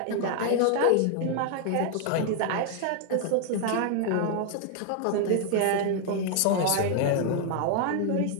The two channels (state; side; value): different; both; correlation 0.00